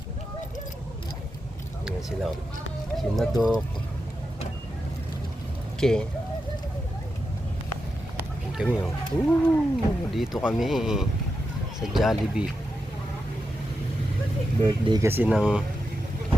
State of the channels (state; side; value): normal; both; correlation 0.88